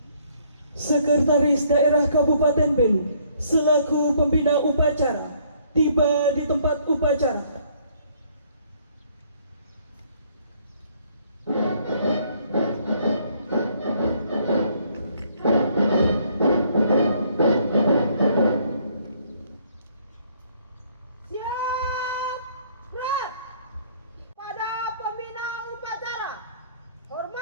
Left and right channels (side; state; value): both; inverted; correlation -0.64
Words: Sekretaris Daerah Kabupaten Belu selaku pembina upacara tiba di tempat upacara.